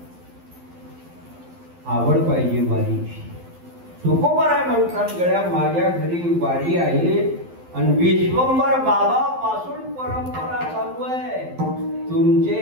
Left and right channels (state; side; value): late; left; 12 ms